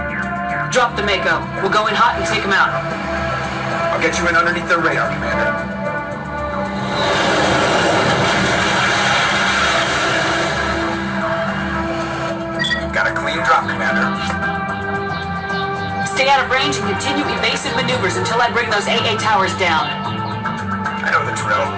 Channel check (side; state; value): both; identical; correlation 1.00